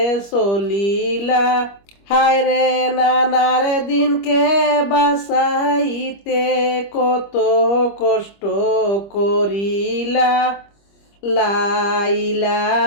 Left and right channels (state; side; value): late; right; 25 ms